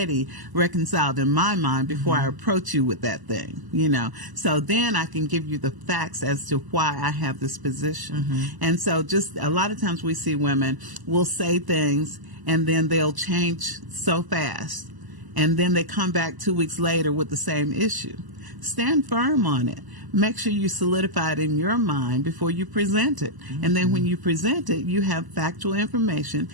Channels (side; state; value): left; late; 1.0 ms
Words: reconciled in my mind before I approach you with that thing, you know. So then I can give you the facts as to why I have this position. And so just a lot of times we see women will say things and then they'll change so fast. And then they come back 2 weeks later with the same issue. Stand firm on it. Make sure you solidify it in your mind before you present it. And then when you present it, you have factual information